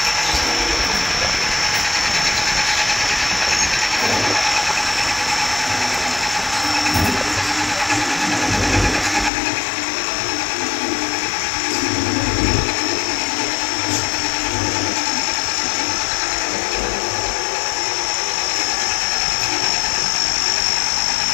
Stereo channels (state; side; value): drops out; right; at 9.3 s